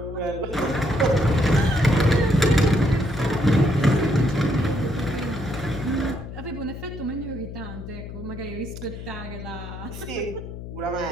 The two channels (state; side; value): noise; left; hum, 10 dB below the sound